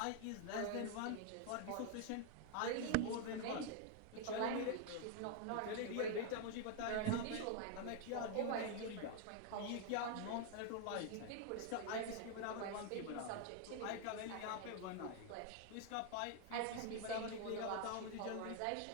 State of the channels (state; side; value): different; both; correlation 0.00